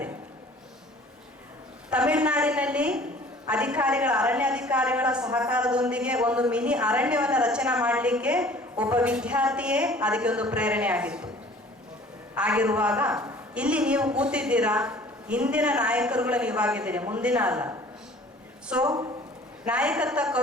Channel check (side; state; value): both; normal; correlation 0.49